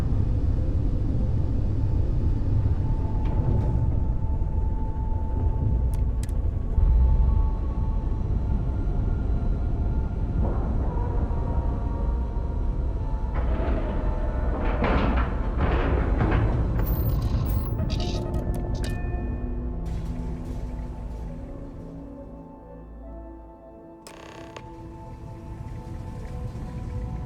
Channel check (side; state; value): both; identical; correlation 1.00